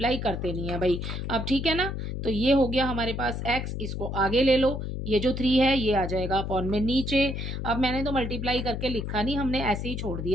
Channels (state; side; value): noise; left; hum, 4 dB below the sound